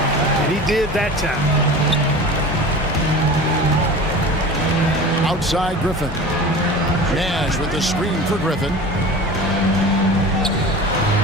and he did that time. Outside Griffin. Nash with the screen for Griffin.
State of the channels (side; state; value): both; normal; correlation 0.36